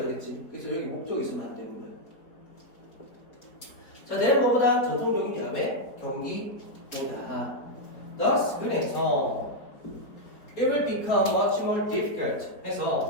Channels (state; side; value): late; right; 4.4 ms